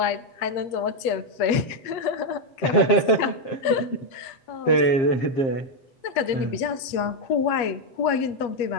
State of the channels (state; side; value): late; right; 8.3 ms